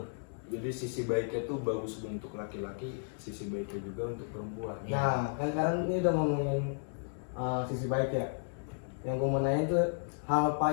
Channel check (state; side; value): silent; right; digital silence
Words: Jadi sisi baiknya tuh bagus untuk laki-laki, sisi baiknya juga untuk perempuan. Nah, kan sekarang ini udah ngomongin sisi baik ya. Yang gue mau nanya itu hal